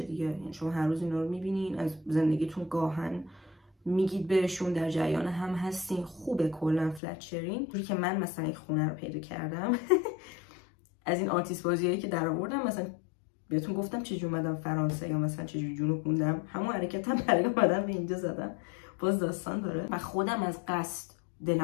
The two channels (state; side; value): drops out; right; at 7.0 s